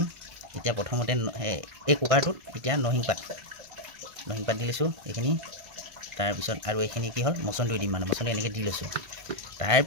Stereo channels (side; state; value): left; late; 1.5 ms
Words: এতিয়া প্ৰথমতে এই কুকাৰটোত এতিয়া নৰসিংহ পাত দি লৈছোঁ এইখিনি তাৰপিছত আৰু এইখিনি কি হ'ল মচন্দৰী দিম মানে মচন্দৰী এনেকৈ দি লৈছোঁ